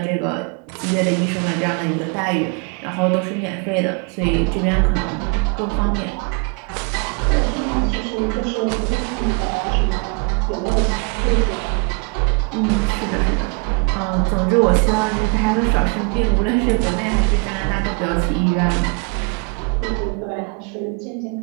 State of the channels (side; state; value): left; quieter; 33.4 dB